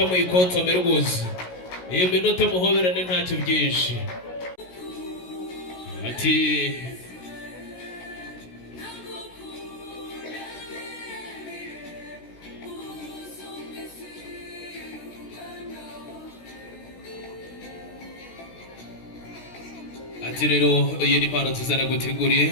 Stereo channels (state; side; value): late; right; 16 ms